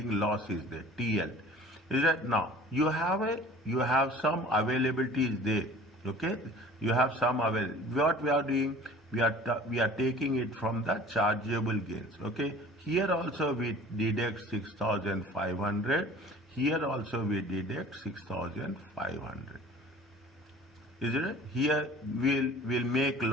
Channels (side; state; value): both; normal; correlation 0.46